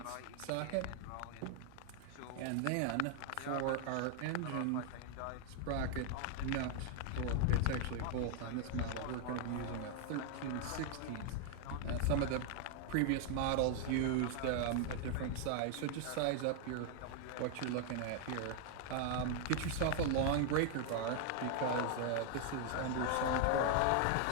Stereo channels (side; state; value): both; different; correlation 0.00